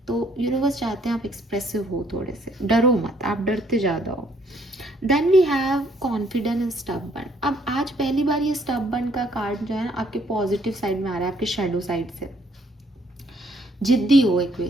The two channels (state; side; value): normal; both; correlation 0.66